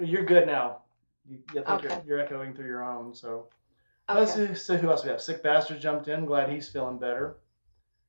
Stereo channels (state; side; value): inverted; both; correlation -1.00